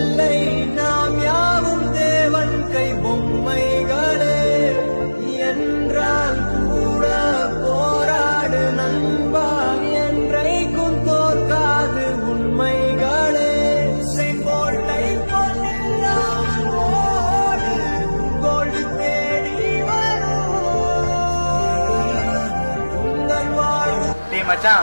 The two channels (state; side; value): inverted; both; correlation -1.00